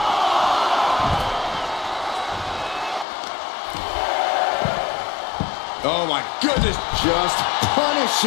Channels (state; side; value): drops out; right; at 3.1 s